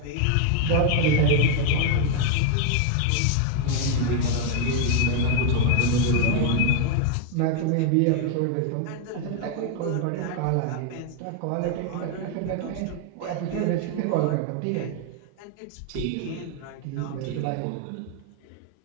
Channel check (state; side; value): different; both; correlation 0.00